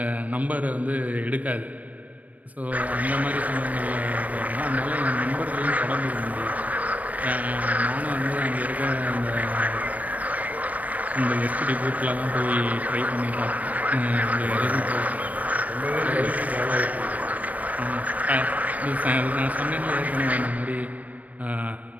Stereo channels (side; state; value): left; late; 0.071 ms